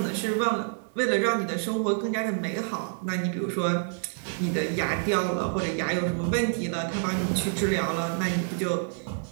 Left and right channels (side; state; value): left; silent; digital silence